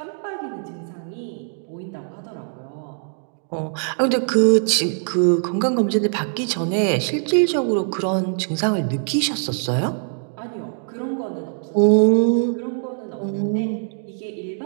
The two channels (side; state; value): left; silent; digital silence